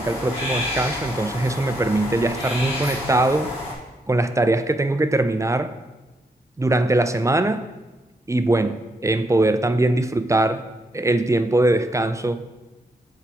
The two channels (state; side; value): normal; both; correlation 0.77